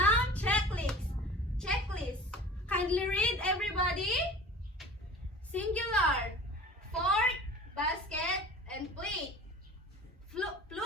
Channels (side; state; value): both; normal; correlation 0.41